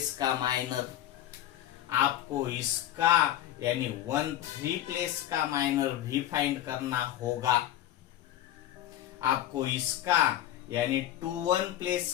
का माइनर। आपको इसका यानी 1 3 प्लेस का माइनर भी फाइंड करना होगा। आपको इसका यानी 2 1 प्लेस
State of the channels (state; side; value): quieter; right; 12.8 dB